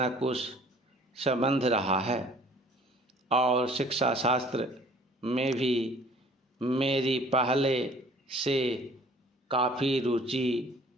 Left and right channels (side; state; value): both; normal; correlation 0.53